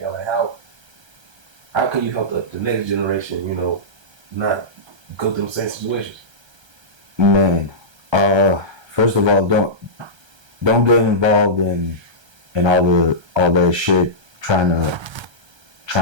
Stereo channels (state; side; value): late; left; 1.3 ms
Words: out? Like, how can you help the next generation, you know, not go through the same situations? Man, first of all, don't get involved in all that shit, trying